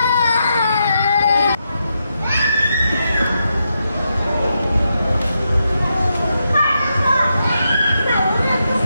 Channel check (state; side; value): inverted; both; correlation -0.84